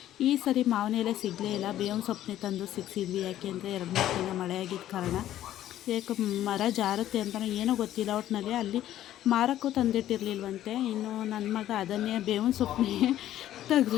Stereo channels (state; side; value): quieter; right; 12.6 dB